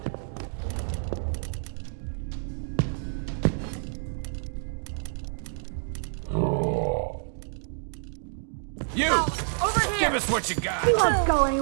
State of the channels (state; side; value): silent; left; digital silence